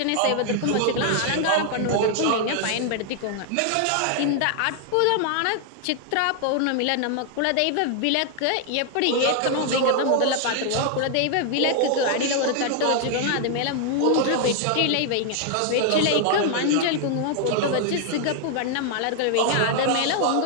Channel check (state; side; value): different; both; correlation 0.00